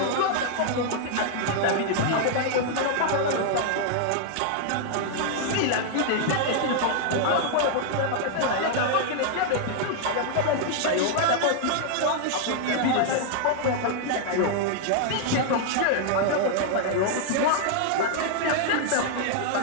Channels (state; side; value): different; both; correlation -0.01